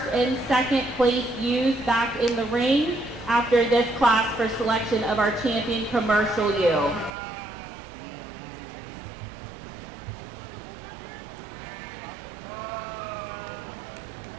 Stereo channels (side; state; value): left; drops out; at 7.1 s